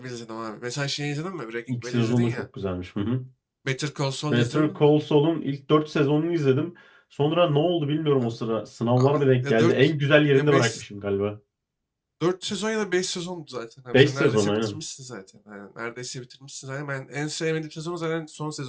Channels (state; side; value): identical; both; correlation 1.00